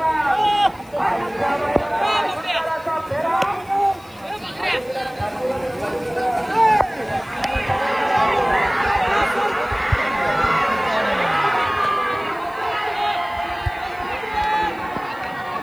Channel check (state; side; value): noise; left; hiss, 28 dB below the sound